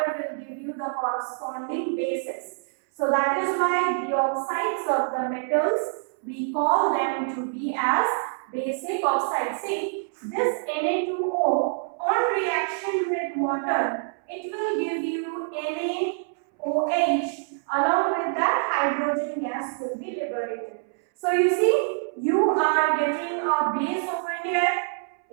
will give you the corresponding bases. So that is why the oxides of the metals, we call them to be as basic oxide. See, this Na2O on reaction with water, it will give you NaOH. Along with that, hydrogen gas will be liberated. So you see, you are getting a base over here,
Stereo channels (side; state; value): left; silent; 61 dB below the other